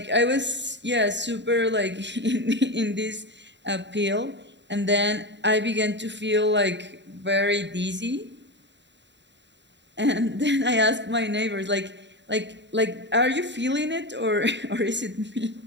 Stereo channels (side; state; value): left; late; 0.52 ms